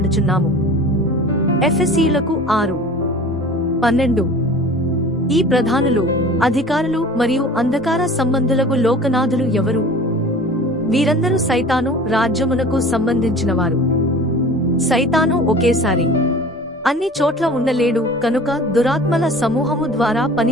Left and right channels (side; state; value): both; normal; correlation 0.41